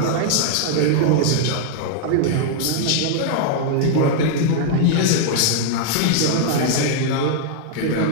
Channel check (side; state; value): both; different; correlation -0.01